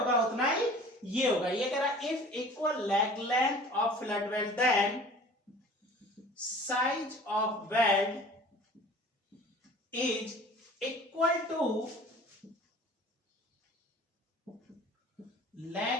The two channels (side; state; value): both; normal; correlation 0.45